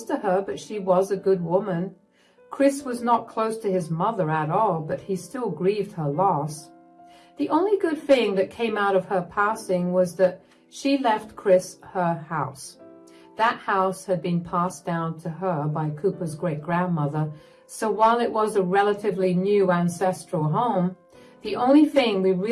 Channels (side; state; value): both; identical; correlation 1.00